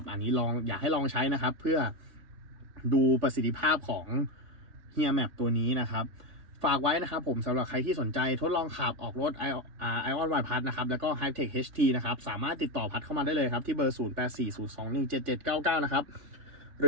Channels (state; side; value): late; left; 3.5 ms